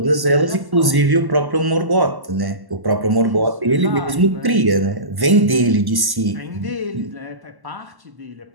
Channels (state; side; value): late; left; 1.1 ms